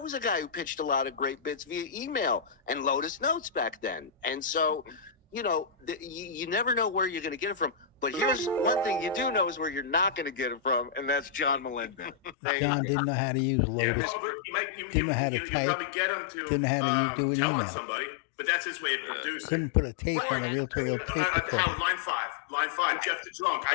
was a guy who pitched a lot of great bits via email and Lotus Notes back then. And so, you never know where you're going to get it from. But here's one thing you do know is where you're not going to get it from, and that's John Melendez. John didn't know how to use Lotus. Didn't know how to type. Probably get him to Didn't know how to do an tell email. somebody, but that's his way of producing. Couldn't put a tape on a reel-to-reel tape recorder. Line 5, Jeff the Drunk. I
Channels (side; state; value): right; drops out; at 12.4 s